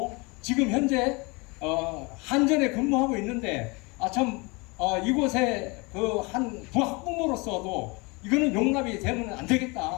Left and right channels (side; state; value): right; quieter; 27.4 dB